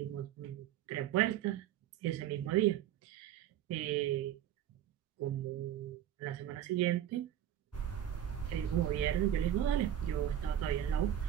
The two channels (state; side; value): quieter; left; 11.2 dB